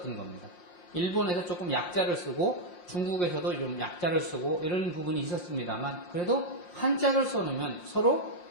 겁니다. 일본에서 조금 약자를 쓰고 중국에서도 좀 약자를 쓰고 이런 부분이 있었습니다만 그래도 한자를 써놓으면 서로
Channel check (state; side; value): late; right; 5.6 ms